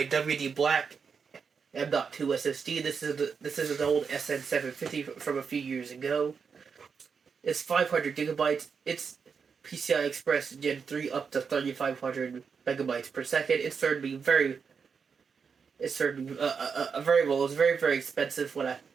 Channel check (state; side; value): quieter; left; 5.9 dB